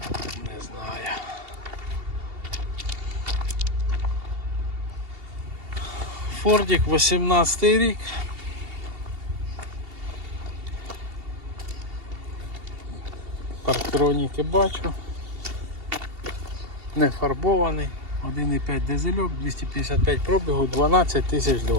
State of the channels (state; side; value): late; left; 2.8 ms